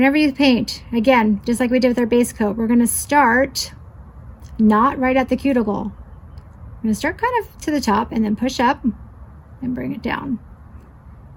you paint, again, just like we did with our base coat, we're going to start not right at the cuticle. I'm going to start kind of to the top and then push up and bring it down.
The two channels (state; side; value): identical; both; correlation 1.00